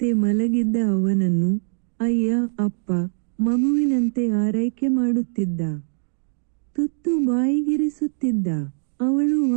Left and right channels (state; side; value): silent; left; digital silence